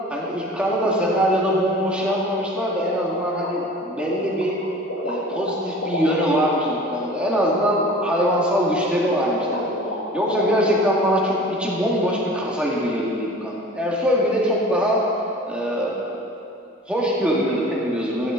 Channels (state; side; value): normal; both; correlation 0.43